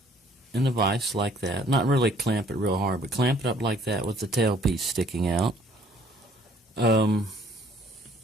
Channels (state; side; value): normal; both; correlation 0.60